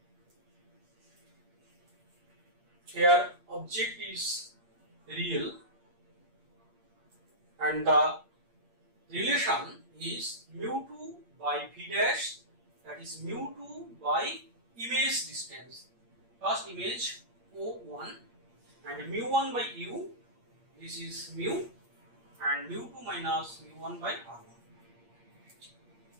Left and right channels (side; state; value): left; late; 8.6 ms